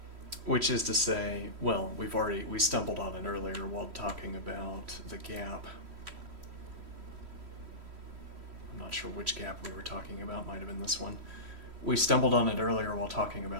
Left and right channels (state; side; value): late; left; 3.1 ms